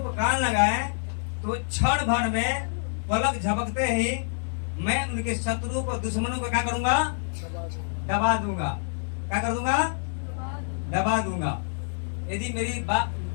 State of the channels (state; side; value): silent; right; digital silence